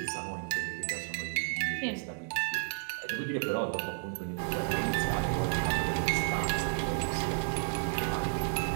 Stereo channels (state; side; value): silent; left; digital silence